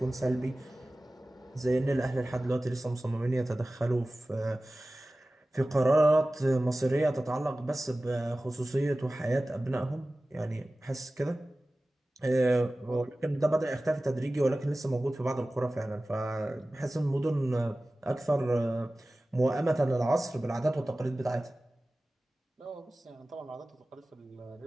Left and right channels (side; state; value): both; normal; correlation 0.97